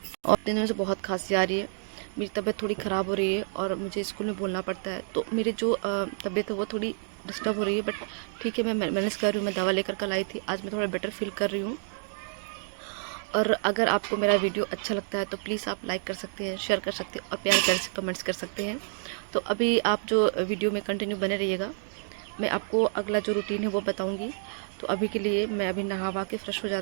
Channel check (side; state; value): left; silent; 59 dB below the other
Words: और दिन में से बहुत खांसी आ रही है, मेरी तबीयत थोड़ी ख़राब हो रही है और मुझे स्कूल में बोलना पड़ता है। तो मेरी जो तबीयत है वो थोड़ी डिस्टर्ब हो रही है, बट ठीक है, मैं मैनेज कर रही हूँ। मैं दवा लेकर कल आई थी, आज मैं थोड़ा बेटर फील कर रही हूँ। और अगर आपको मेरा वीडियो अच्छा लगता है तो प्लीज़ आप लाइक कर सकते हैं, शेयर कर सकते हैं और प्यार प्यार से कमेंट्स कर सकते हैं। तो अभी आप जो वीडियो में कंटिन्यू बने रहिएगा, मैं आपको अगला जो रूटीन है वो बताऊंगी। तो अभी के लिए मैं अभी नहा वहा के फ्रेश हो